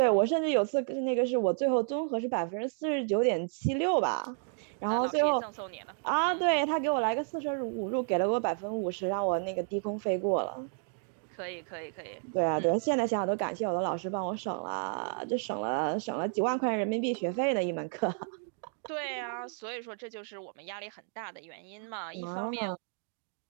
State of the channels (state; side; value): silent; left; 57 dB below the other